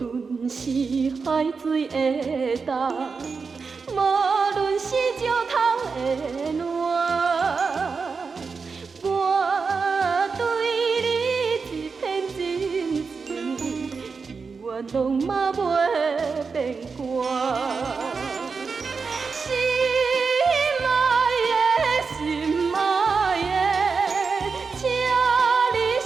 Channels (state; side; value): quieter; left; 5.0 dB